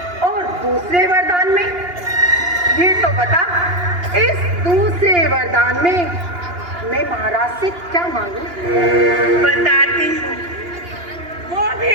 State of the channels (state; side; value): late; left; 2.8 ms